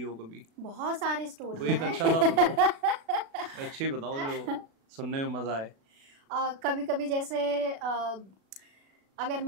कभी। बहुत सारी स्टोरी कोई एक अच्छा सा बताओ, अच्छी बताओ जो सुनने में मजा आए। कभी कभी जैसे अगर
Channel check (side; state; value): left; late; 36 ms